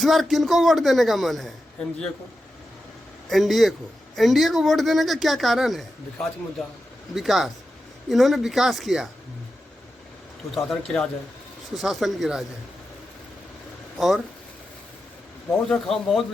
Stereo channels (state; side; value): normal; both; correlation 0.90